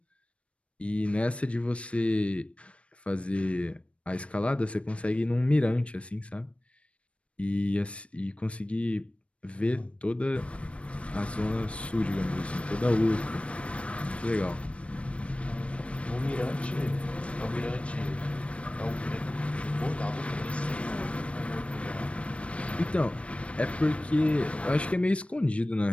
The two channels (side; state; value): right; late; 0.062 ms